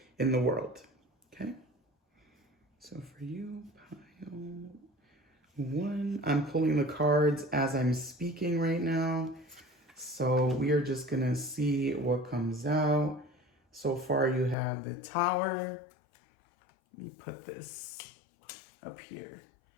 in the world. Okay, so for you, pile 1, I'm pulling the cards as I'm speaking right now. So we are just going to see what comes out. So far you have the Tower. Let me put this up here.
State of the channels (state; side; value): drops out; right; at 14.6 s